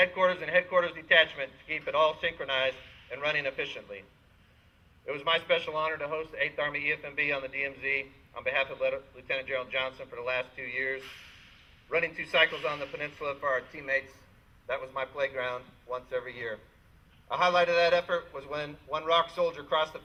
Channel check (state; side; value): identical; both; correlation 1.00